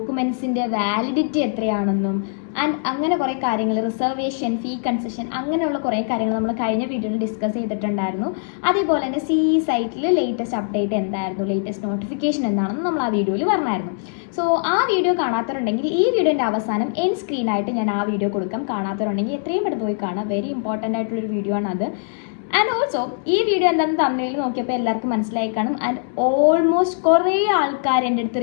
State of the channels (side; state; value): right; silent; digital silence